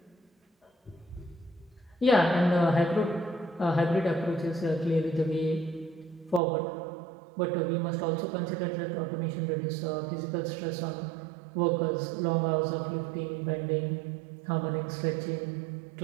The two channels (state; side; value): drops out; left; at 6.4 s